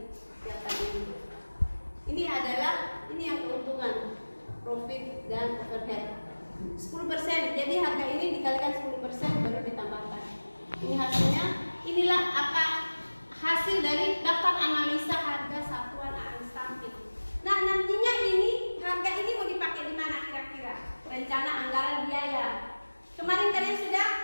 yang tadi. Ini adalah yang keuntungan, profit dan overhead 10%. Jadi harga ini dikalikan 10% baru ditambahkan. Ini hasilnya. Inilah hasil dari daftar analisa harga satuan unstamping. Nah, nantinya harga ini mau dipakai di mana kira-kira? Rencana anggaran biaya. Kemarin kalian sudah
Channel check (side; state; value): both; inverted; correlation -1.00